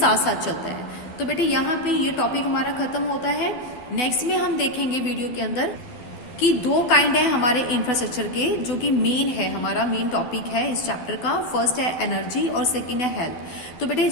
साथ चलता है। तो बेटे यहाँ पे ये टॉपिक हमारा खत्म होता है। नेक्स्ट में हम देखेंगे वीडियो के अंदर कि 2 काइंड है हमारे इंफ्रास्ट्रक्चर के, जो कि मेन है, हमारा मेन टॉपिक है इस चैप्टर का। फर्स्ट है एनर्जी और सेकंड है हेल्थ। तो बेटे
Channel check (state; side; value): late; right; 12 ms